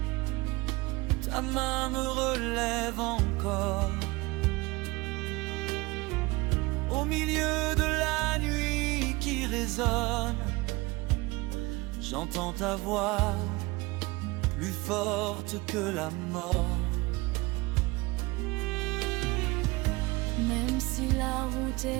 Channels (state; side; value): quieter; left; 22.9 dB